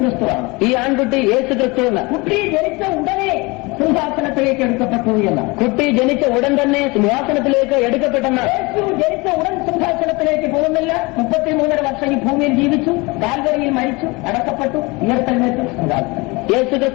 ഈ ആൺകുട്ടി യേശുക്രിസ്തു എന്ന്. കുട്ടി ജനിച്ച ഉടനെ സിംഹാസനത്തിലേക്ക് എടുക്കപ്പെട്ടു എന്ന്. കുട്ടി ജനിച്ച ഉടൻ തന്നെ സിംഹാസനത്തിലേക്ക് എടുക്കപ്പെട്ടെന്ന്. യേശു ജനിച്ച ഉടൻ സിംഹാസനത്തിലേക്ക് പോകുന്നില്ല. 33.5 വർഷം ഈ ഭൂമിയിൽ ജീവിച്ചു, കാൽവരിയിൽ മരിച്ചു, അടക്കപ്പെട്ടു, ഉയർത്തെഴുന്നേറ്റു സിംഹാസനം.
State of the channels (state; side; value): quieter; right; 25.4 dB